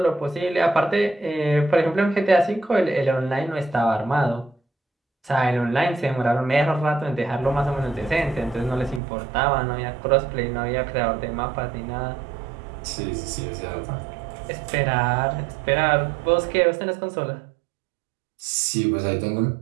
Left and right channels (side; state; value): left; drops out; at 9.0 s